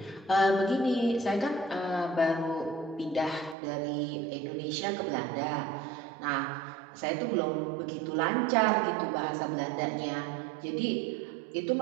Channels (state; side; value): drops out; left; at 3.6 s